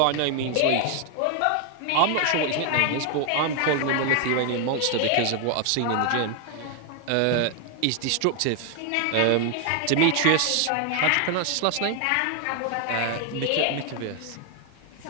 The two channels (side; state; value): both; different; correlation 0.01